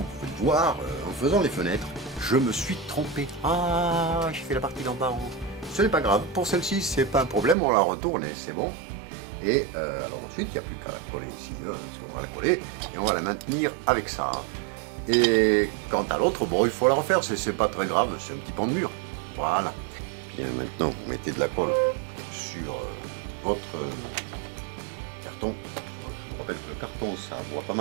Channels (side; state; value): left; drops out; at 7.6 s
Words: pouvez le voir, en faisant les fenêtres, je me suis trompé. Ah, j'ai fait la partie d'en bas en haut. Ce n'est pas grave. Pour celle-ci, c'est pas un problème. On la retourne et c'est bon. Et alors ensuite, il n'y a plus qu'à la coller ici, parce qu'on va la coller et on va la maintenir avec ça. Et quant à l'autre, bon, il faut la refaire, c'est pas très grave, c'est un petit pan de mur. Voilà. Bien, maintenant, vous mettez de la colle sur votre carton. Je vous rappelle que le carton, ça boit pas